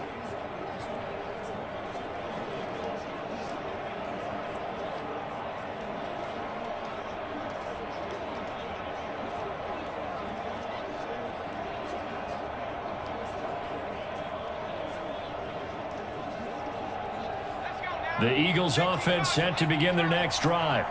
The Eagles offense set to begin their next drive.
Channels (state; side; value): identical; both; correlation 1.00